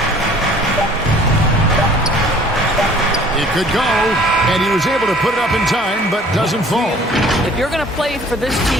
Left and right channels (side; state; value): both; normal; correlation 0.52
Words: It could go, and he was able to put it up in time, but doesn't fall. If you're going to play for this